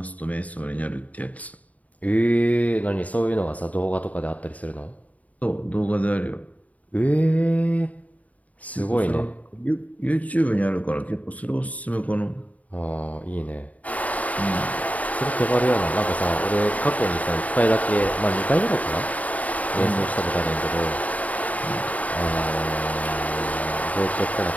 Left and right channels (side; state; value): right; late; 0.071 ms